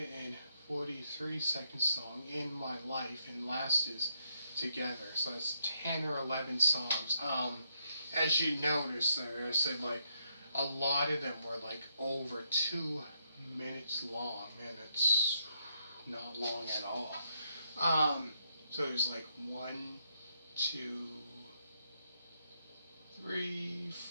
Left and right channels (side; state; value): both; inverted; correlation -0.77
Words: and 43-second song, In My Life, and last is together. So that's 10 or 11 songs. As you notice there, I said like a lot of them were like over 2 minutes long. Man, it's not long at all. So there's like 1, 2, 3,